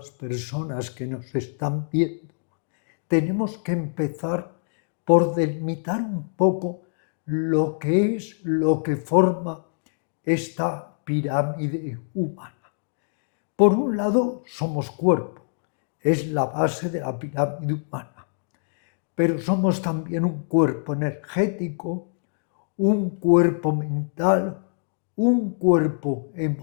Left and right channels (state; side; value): silent; right; digital silence